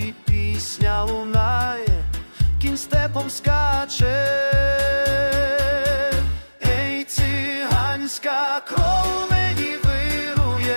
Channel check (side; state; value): both; inverted; correlation -1.00